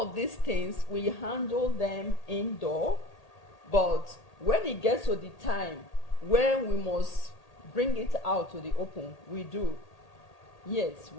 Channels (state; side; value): late; right; 1.8 ms